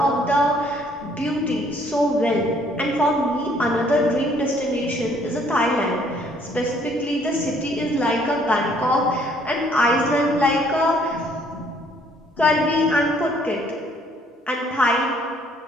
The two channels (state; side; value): normal; both; correlation 0.63